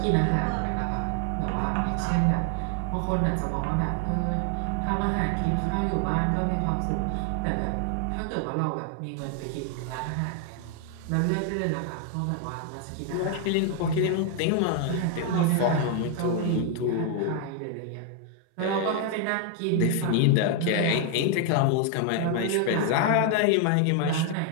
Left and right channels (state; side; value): different; both; correlation 0.01